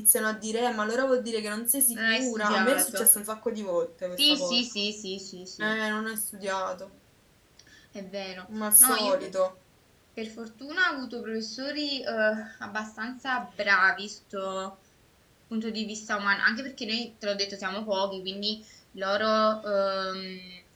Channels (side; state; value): both; identical; correlation 1.00